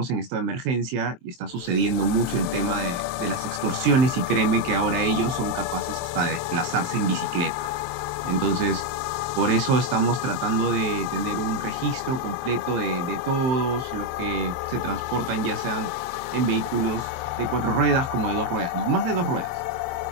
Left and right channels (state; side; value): late; left; 23 ms